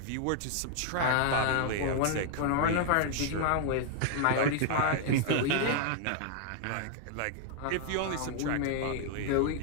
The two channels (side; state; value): both; different; correlation 0.00